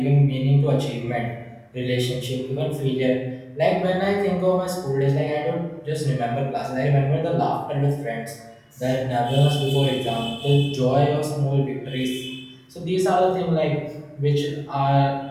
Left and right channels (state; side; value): identical; both; correlation 1.00